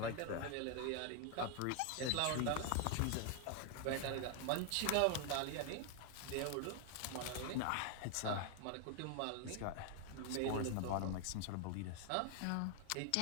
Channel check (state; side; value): different; both; correlation 0.00